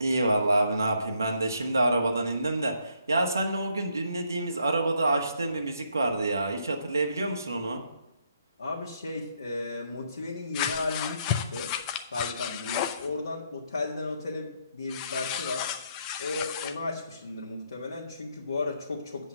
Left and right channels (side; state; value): both; inverted; correlation -0.72